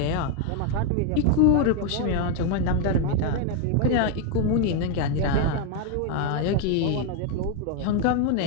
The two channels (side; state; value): both; different; correlation 0.01